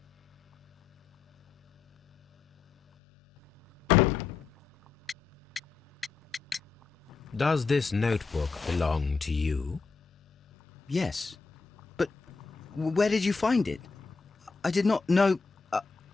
Does this notebook belong to you? Yes. But where did you find it? I did not know...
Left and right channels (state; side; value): quieter; right; 4.7 dB